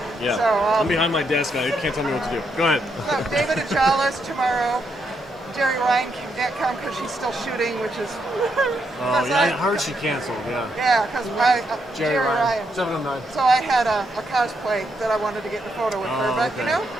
Yeah. So, I'm behind my desk. I can't tell me what to do. Go ahead. So David Achala's tomorrow. Jerry Ryan can't come because she's still shooting, which is. Oh, yeah, I heard she canceled, yeah. Yeah, because Jerry Ryan. 709. So I had a cosplay that I wanted to get in a photo with her, but okay. you know,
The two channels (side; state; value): both; normal; correlation 0.79